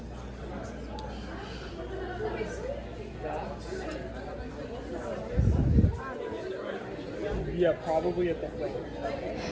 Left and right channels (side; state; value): both; identical; correlation 1.00